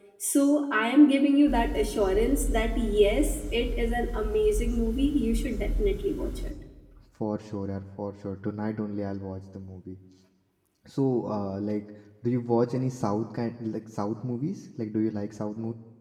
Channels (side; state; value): both; identical; correlation 1.00